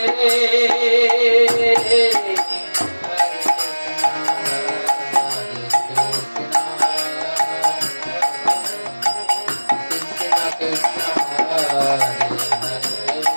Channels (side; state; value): both; inverted; correlation -1.00